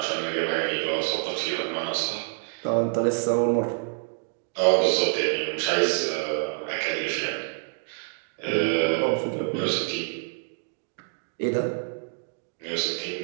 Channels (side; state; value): left; silent; 60 dB below the other